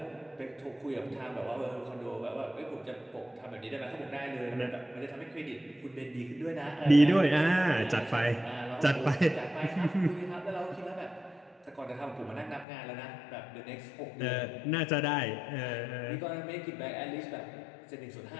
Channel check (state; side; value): drops out; right; at 12.7 s